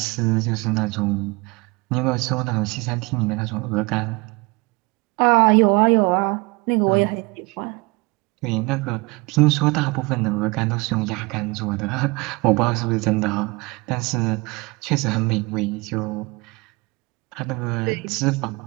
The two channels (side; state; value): left; quieter; 25.7 dB